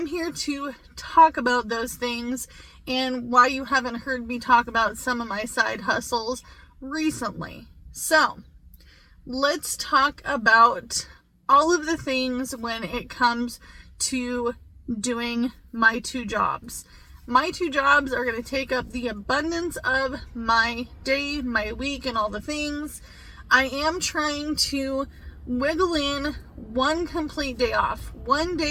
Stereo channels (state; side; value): identical; both; correlation 1.00